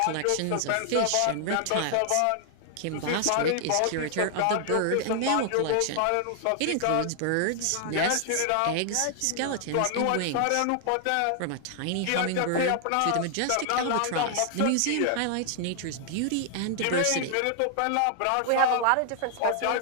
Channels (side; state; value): both; different; correlation 0.00